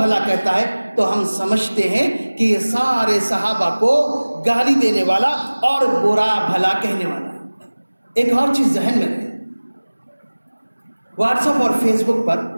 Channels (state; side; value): inverted; both; correlation -1.00